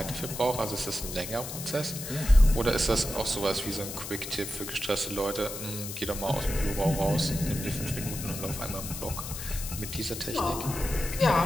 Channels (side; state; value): left; noise; hiss, 8 dB below the sound